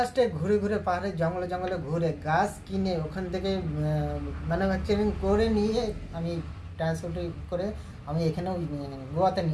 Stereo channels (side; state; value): both; identical; correlation 1.00